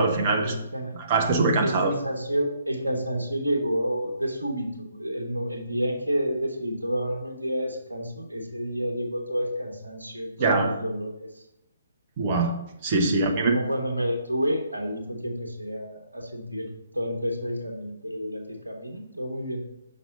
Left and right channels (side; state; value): both; inverted; correlation -0.72